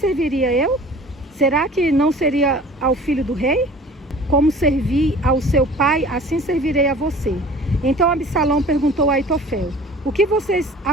eu? Será que não seria ao filho do rei? Como servi ao seu pai, assim servirei a você. Então Absalão perguntou a Aitofel: O que vocês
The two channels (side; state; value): both; normal; correlation 0.45